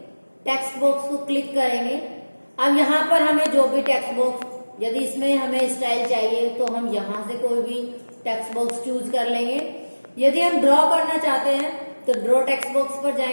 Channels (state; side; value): inverted; both; correlation -1.00